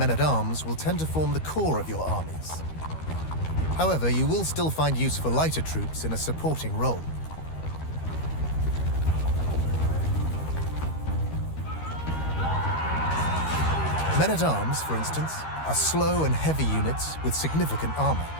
will tend to form the core of your armies. However, you will still find use for lighter troops in a supporting role. Men-at-arms, for instance, are slow and heavy units with significant armor.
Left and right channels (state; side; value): late; right; 13 ms